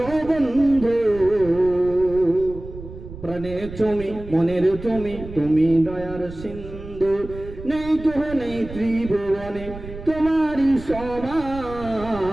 বন্ধু, প্রাণে তুমি, মনের তুমি, তুমি দয়ার সিন্ধু। নেই কেহ নেই ত্রিভুবনে তোমারই সমান,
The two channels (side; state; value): right; noise; rumble, 13 dB below the sound